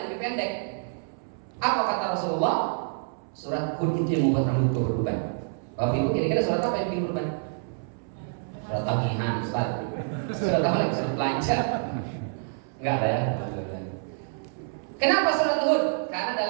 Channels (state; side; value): silent; left; 60 dB below the other